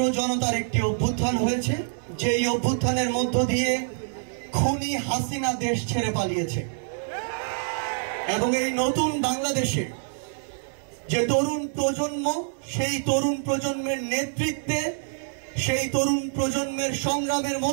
জনতার একটি অভ্যুত্থান হয়েছে, যে এই অভ্যুত্থানের মধ্য দিয়ে খুনি হাসিনা দেশ ছেড়ে পালিয়েছে। এবং এই নতুন বাংলাদেশে যে তরুণ প্রজন্ম, সেই তরুণ প্রজন্মের নেতৃত্বে, সেই তরুণ প্রজন্মের সংগ্রামের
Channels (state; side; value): silent; left; digital silence